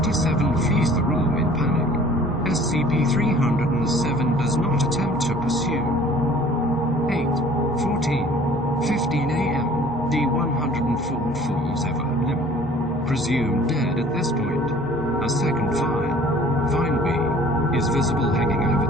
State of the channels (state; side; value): noise; left; hum, 20 dB below the sound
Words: flees the room in panic. SCP-307 does not attempt to pursue. 8:14:15 a.m. D-104 falls over limp, presumed dead at this point. A second Vine B, is visible hanging over